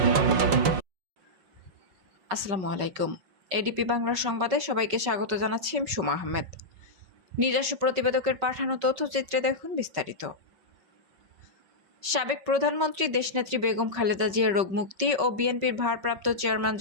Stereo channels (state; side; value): late; left; 5.3 ms